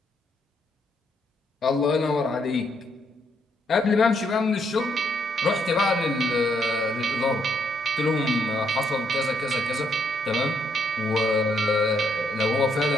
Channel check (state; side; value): normal; both; correlation 0.74